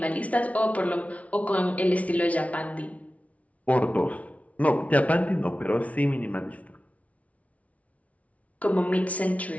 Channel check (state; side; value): late; right; 0.067 ms